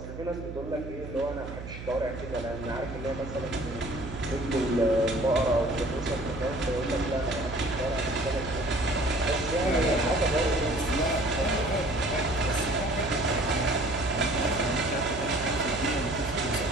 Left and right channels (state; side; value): noise; right; hum, 10 dB below the sound